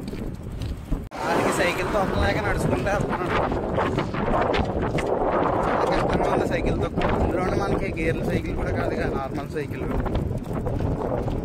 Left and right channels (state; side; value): identical; both; correlation 1.00